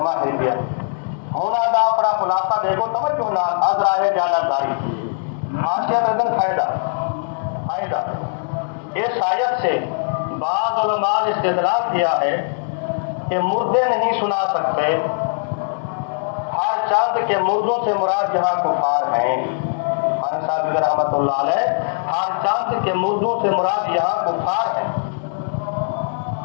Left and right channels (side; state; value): right; silent; digital silence